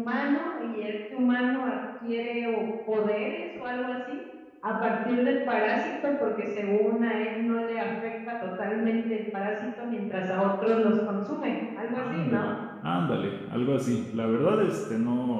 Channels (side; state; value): both; identical; correlation 1.00